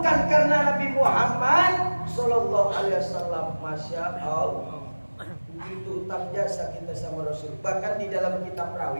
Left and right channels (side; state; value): both; inverted; correlation -1.00